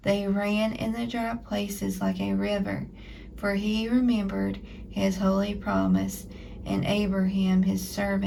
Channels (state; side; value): identical; both; correlation 1.00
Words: They ran in the dry places like a river, for he remembered his holy promise and Abraham his